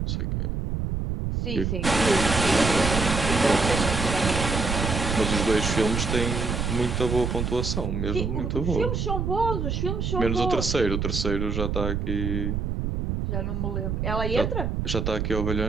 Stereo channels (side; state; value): right; noise; rumble, 1 dB below the sound